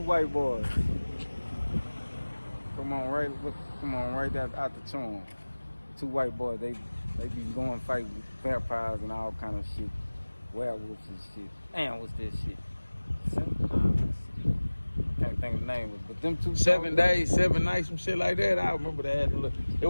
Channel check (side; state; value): both; inverted; correlation -1.00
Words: boys. Come on right out the Chom. Two white boys, they be going fight with vampires and all kind of shit. Werewolves and shit. Damn, what's this shit? Can't think of the name of it, but them two 7 days, 7 nights, some shit like that. I remember that. It